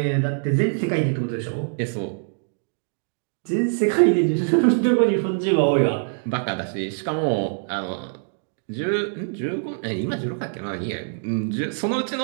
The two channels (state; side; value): silent; left; digital silence